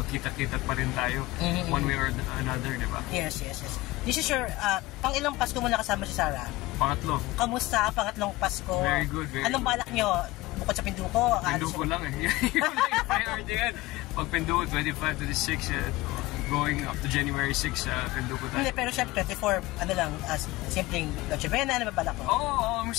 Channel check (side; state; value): right; quieter; 19.6 dB